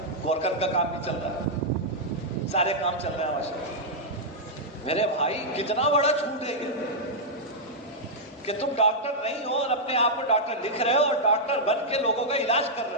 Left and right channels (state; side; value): normal; both; correlation -0.06